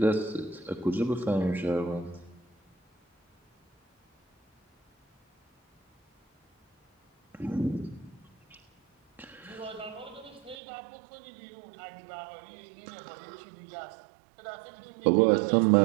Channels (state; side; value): drops out; left; at 10.6 s